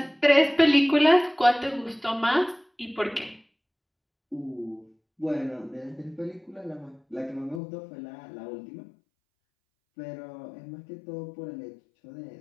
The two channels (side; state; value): right; drops out; at 7.6 s